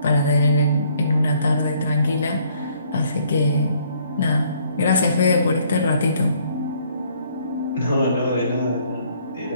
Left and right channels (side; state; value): both; inverted; correlation -0.64